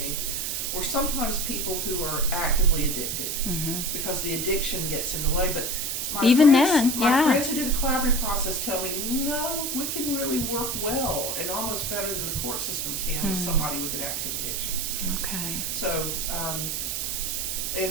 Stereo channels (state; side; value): noise; right; hiss, 1 dB below the sound